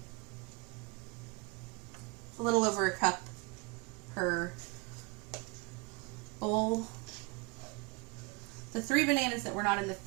little over a cup per bowl. The 3 bananas that were not in the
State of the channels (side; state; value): left; quieter; 28.1 dB